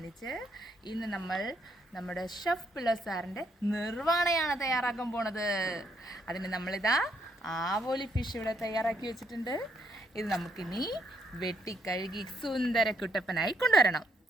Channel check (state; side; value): normal; both; correlation 0.74